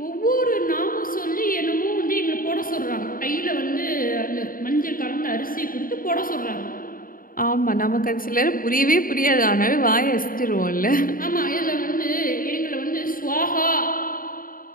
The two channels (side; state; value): right; late; 0.41 ms